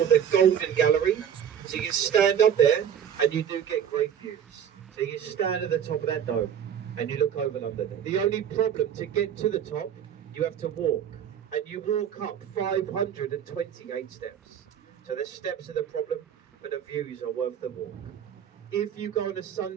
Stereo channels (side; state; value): left; quieter; 8.9 dB